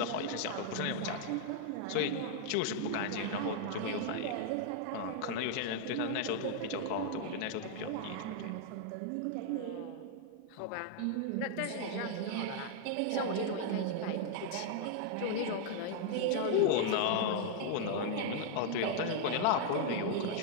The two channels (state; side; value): different; both; correlation 0.00